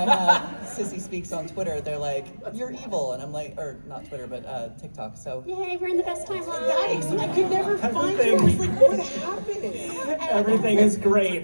have Sissy Speaks on Twitter, they're like, you're evil. And I'm like, or not Twitter, but TikTok. So Yay, we're in the best time. Guys, I could never find you. I was like, what's happening? Everything is great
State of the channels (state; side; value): inverted; both; correlation -1.00